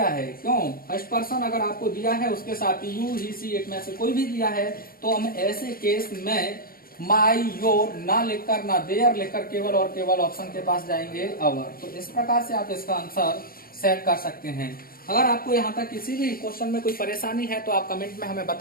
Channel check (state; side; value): late; right; 0.43 ms